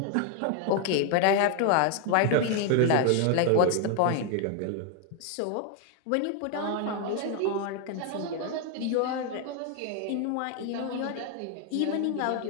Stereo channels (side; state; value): both; different; correlation 0.00